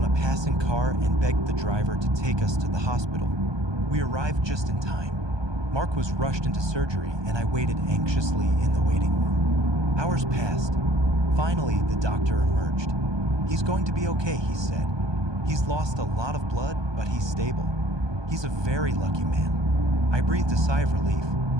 a passing car and begged the driver to take us to the hospital. We arrived just in time. Mark was rushed into surgery, and I waited anxiously in the waiting room. Hours passed. Finally, the doctor emerged. "He's going to be okay," he said. "He's lost a lot of blood, but he's stable. He's a very lucky man." I breathed a sigh of relief.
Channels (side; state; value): left; late; 1.2 ms